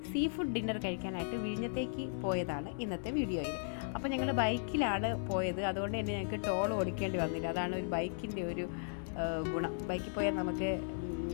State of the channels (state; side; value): silent; right; digital silence